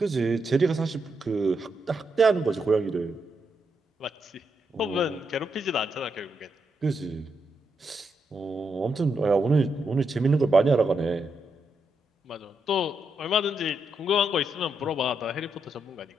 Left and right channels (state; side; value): normal; both; correlation 0.81